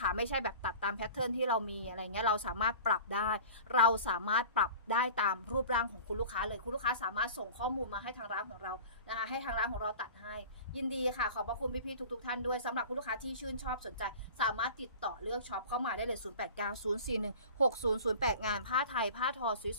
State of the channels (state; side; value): inverted; both; correlation -0.40